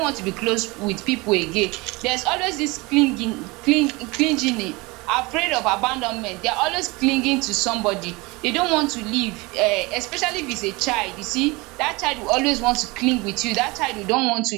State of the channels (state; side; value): quieter; left; 24.5 dB